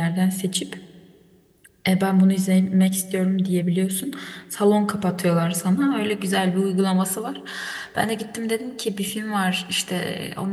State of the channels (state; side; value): identical; both; correlation 1.00